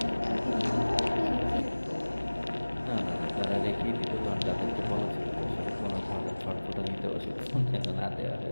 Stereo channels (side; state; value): both; inverted; correlation -1.00